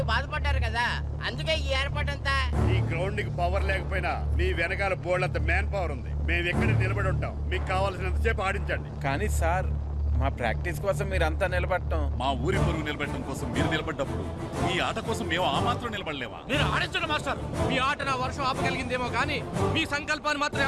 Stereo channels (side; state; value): both; identical; correlation 1.00